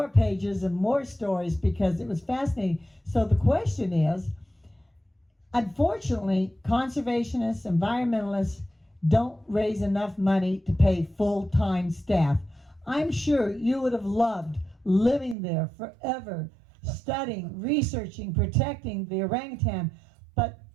pages and more stories because it was fascinating. So the question is, unfortunately, conservationists, environmentalists don't raise enough money to pay full-time staff. I'm sure you would have loved living there forever, studying, researching, protecting the orangutan, but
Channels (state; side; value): drops out; left; at 15.4 s